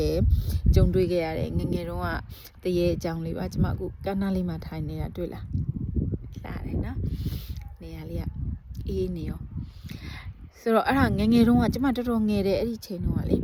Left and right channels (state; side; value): identical; both; correlation 1.00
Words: ယ်ကြုံတွေ့ခဲ့ရတယ်ငငယ်တုန်းကတရေအကြောင်းလေးပါကျမအခုကန်းနာလေးမှာထိုင်နေတာတွေ့လားလာတယ်နော်နေရာလေးကအေးနေရောဆိုတော့အဲ့ဒါငငယ်တုန်းကကျမတော်တော်ငယ်တယ်အဲ့ဒီချိန်တုန်းကလေ